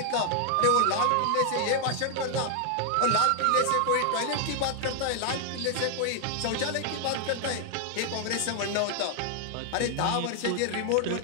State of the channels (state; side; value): different; both; correlation 0.00